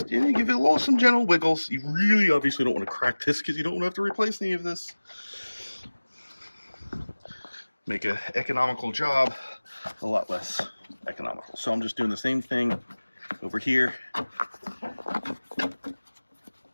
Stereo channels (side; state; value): both; inverted; correlation -1.00